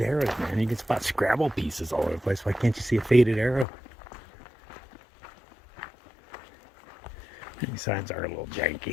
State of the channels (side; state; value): right; drops out; at 3.7 s